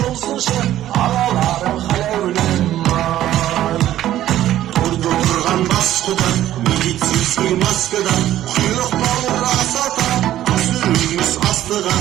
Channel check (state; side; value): quieter; left; 13.0 dB